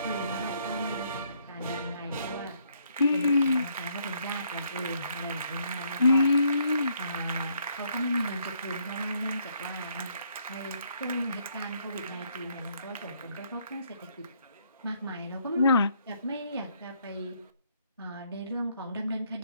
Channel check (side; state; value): both; inverted; correlation -0.70